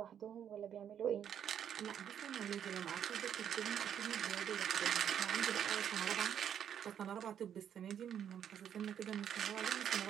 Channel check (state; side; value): quieter; left; 9.1 dB